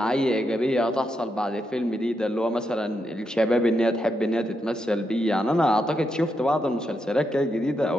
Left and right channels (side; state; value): both; normal; correlation 0.83